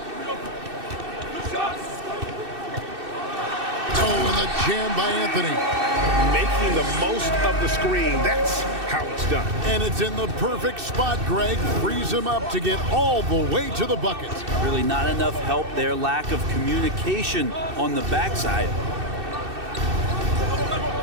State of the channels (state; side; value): late; left; 2.6 ms